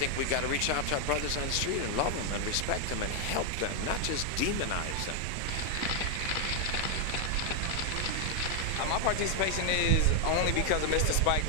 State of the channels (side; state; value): both; different; correlation 0.00